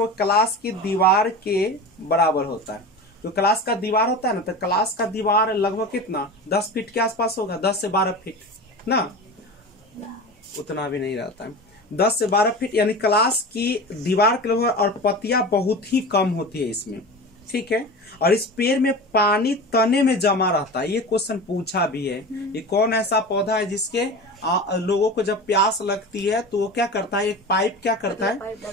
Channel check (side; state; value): both; normal; correlation 0.31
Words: क्लास की दीवार के बराबर होता है। तो क्लास का दीवार होता है ना, तो क्लास का दीवार लगभग कितना 10 फीट के आसपास होगा, 10 से 12 फीट ना, उतना भी नहीं रहता है, 10 से 12 फीट यानी क्लास की दीवार के लगभग। और पत्तियां बहुत ही कम होती है इसमें, ठीक है। और इस पेड़ में पानी तने में जमा रहता है। ये क्वेश्चन पूछा भी है। ये कौन ऐसा पौधा है जिसके लोगों को जब प्यास लगती है तो वो क्या करता है, एक पाइप क्या करता है,